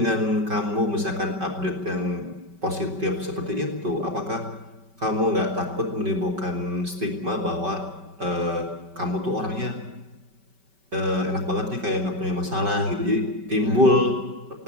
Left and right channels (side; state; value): left; late; 5.2 ms